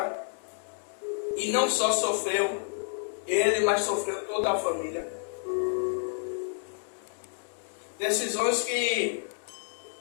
e não só sofreu ele, mas sofreu toda a família. Decisões que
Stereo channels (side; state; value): right; silent; digital silence